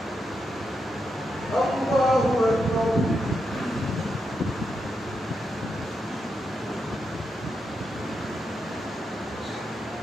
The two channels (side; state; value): both; normal; correlation 0.84